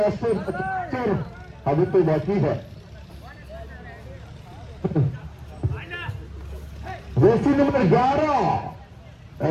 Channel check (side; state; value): both; identical; correlation 1.00